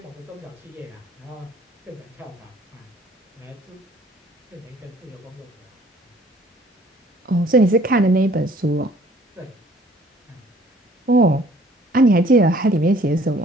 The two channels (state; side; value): normal; both; correlation 0.56